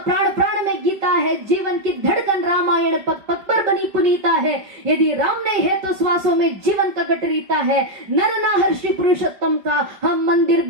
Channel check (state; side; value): late; left; 5.3 ms